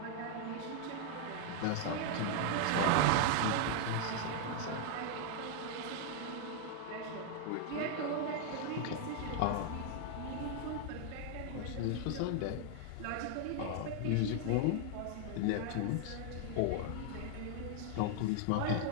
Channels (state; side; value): different; both; correlation 0.00